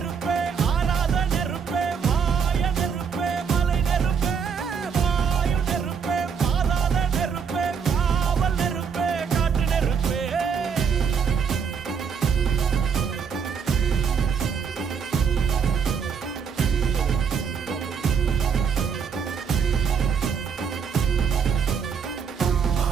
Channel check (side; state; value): left; quieter; 6.5 dB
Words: ஆராத நெருப்பே, மாய நெருப்பே, மலை நெருப்பே, வாயு நெருப்பே, பாதாள நெருப்பே, காவல் நெருப்பே, காட்டு நெருப்பே.